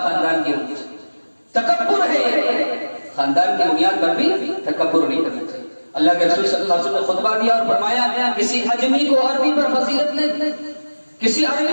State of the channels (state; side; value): inverted; both; correlation -1.00